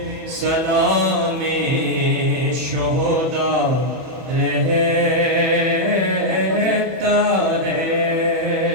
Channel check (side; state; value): left; late; 31 ms